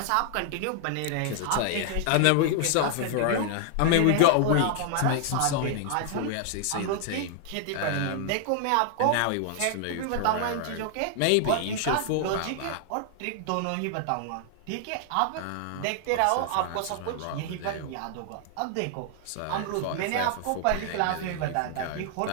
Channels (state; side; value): different; both; correlation 0.00